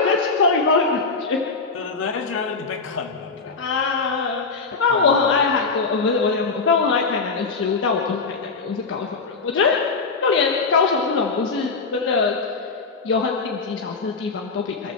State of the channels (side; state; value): right; quieter; 4.4 dB